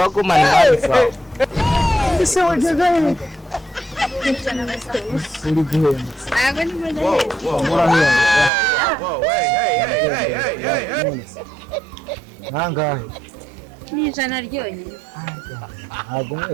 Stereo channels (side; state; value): left; drops out; at 8.5 s